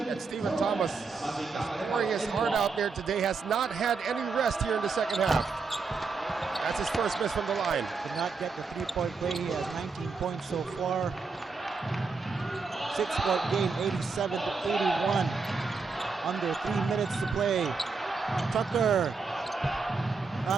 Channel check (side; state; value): left; quieter; 4.5 dB